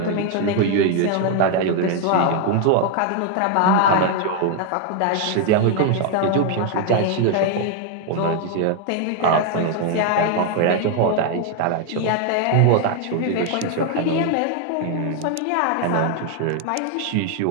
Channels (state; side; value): different; both; correlation 0.01